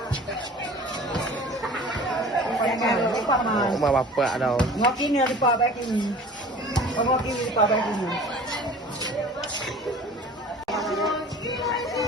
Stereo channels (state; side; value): normal; both; correlation 0.43